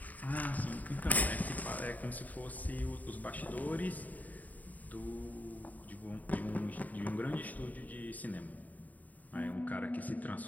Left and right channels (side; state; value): right; late; 0.077 ms